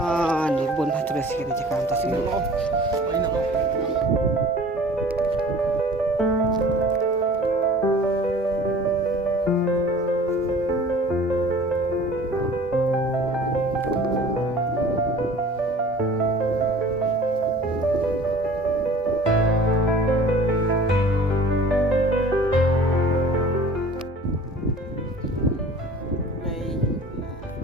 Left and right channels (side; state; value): both; normal; correlation 0.46